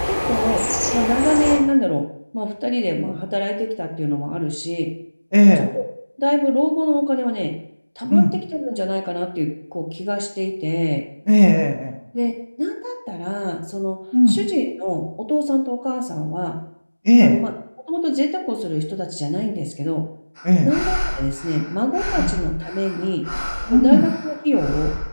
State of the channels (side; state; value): both; inverted; correlation -1.00